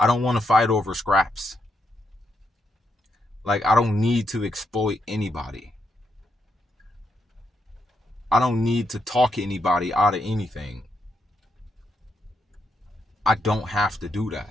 don't want to fight over scraps. Like, I don't need to exploit anybody. I don't need to talk anybody out of anything. I don't have to do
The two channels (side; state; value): both; normal; correlation 0.80